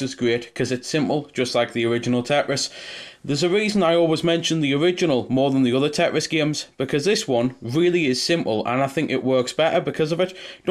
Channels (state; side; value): identical; both; correlation 1.00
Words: is great because it's simple, just like the original Tetris. There's a reason I always mention the original more than the other Tetris games, because this one really is simple and I think it works better because of it.